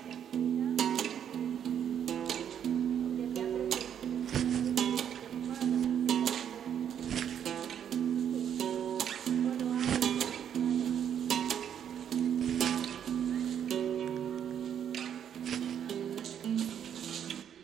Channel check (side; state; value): left; quieter; 9.0 dB